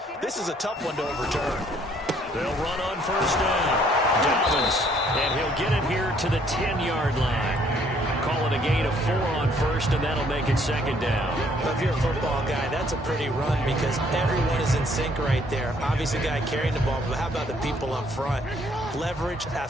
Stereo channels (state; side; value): normal; both; correlation 0.64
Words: This is a tough one to overturn. They'll run on 1st down. Dobbins, and he'll get it here to the 10-yard line. Call it a gain of 4 on 1st, and that'll make it 2nd down. Well, if you're a football guy, that's a pretty run because everyone is in sync right there. Obviously, the guy carrying the ball, but how about the people up front? Leverage,